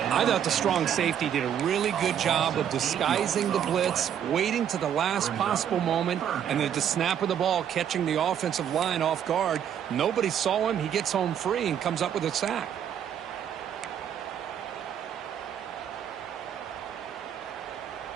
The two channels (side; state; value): left; quieter; 9.2 dB